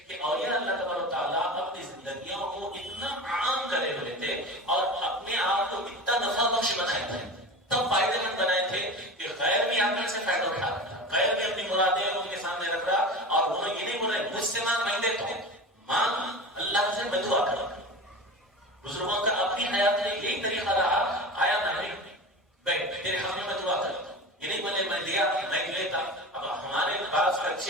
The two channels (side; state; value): both; normal; correlation 0.31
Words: کہ اولیاء اللہ تعالیٰ اپنی زندگیوں کو اتنا عام کرے ہوئے تھے اور اپنے آپ کو اتنا نفع بخش بنائے تھے، تب فائدے مند بنائے تھے کہ غیر بھی آپ سے فائدہ اٹھا رہا تھا، غیر بھی اپنی مرادیں ان کے سامنے رکھ رہا، اور انہوں یہ نہیں بول رہے مجھ سے مانگ، میں دیتا ہوں، مانگ اللہ سے، میں دعا کروں۔ بزرگوں کا اپنی حیات میں یہی طریقہ رہا، آیا نہیں بیٹھ تیرے ہم میں دعا کرتا ہوں، یہ نہیں بولے میں دیا میں لیتا۔ اب ہمارے پاس